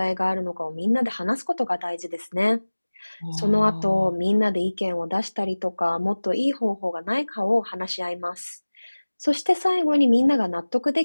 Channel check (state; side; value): inverted; both; correlation -1.00